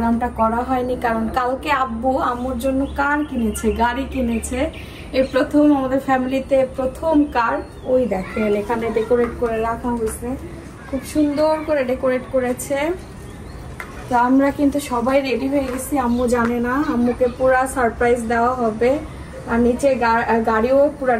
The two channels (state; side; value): identical; both; correlation 1.00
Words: করা হয়নি কারণ কালকে আব্বু আম্মুর জন্য কার কিনেছে, গাড়ি কিনেছে। এই প্রথম আমাদের ফ্যামিলিতে প্রথম কার। ওই দেখেন এখানে ডেকোরেট করে রাখা হয়েছে, খুব সুন্দর করে ডেকোরেট করেছে। তো আমরা কিন্তু সবাই রেডি হয়ে গেছি। আম্মু জানে না, আম্মুকে পুরা সারপ্রাইজ দেওয়া হবে। আর নিচে গাড়িও পুরা